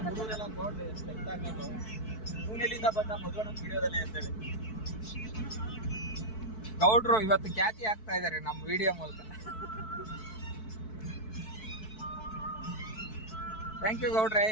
ಹುಡುಗರೆಲ್ಲ ನೋಡ್ಲಿ ಎಷ್ಟು ಎಕ್ಟಾಗೋದು. ಎಲ್ಲಿಂದ ಬಂದ ಮದುವೆ ನಮ್ಮ ವಿಡಿಯೋದಲ್ಲಿ ಅಂತೇಳಿ. ಗೌಡ್ರು ಇವತ್ತು ಖ್ಯಾತಿ ಆಗ್ತಾ ಇದಾರೆ ನಮ್ಮ ವಿಡಿಯೋ ಮೂಲಕ. ಥ್ಯಾಂಕ್ ಯು ಗೌಡ್ರೆ.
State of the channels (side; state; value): right; late; 4.6 ms